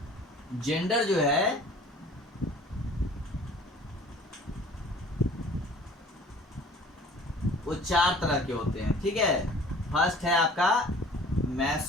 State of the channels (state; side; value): normal; both; correlation 0.49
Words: जेंडर जो है वो 4 तरह के होते हैं, ठीक है। फर्स्ट है आपका